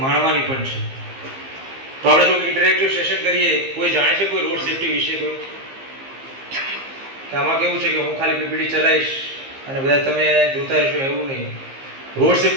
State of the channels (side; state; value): left; late; 15 ms